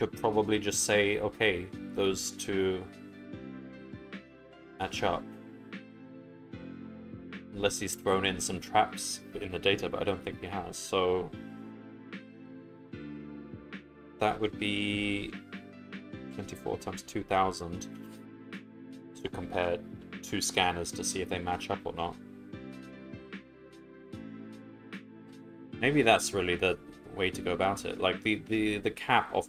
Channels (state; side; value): identical; both; correlation 1.00